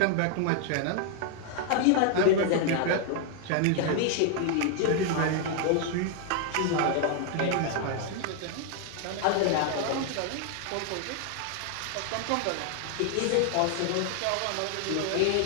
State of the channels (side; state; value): both; different; correlation 0.00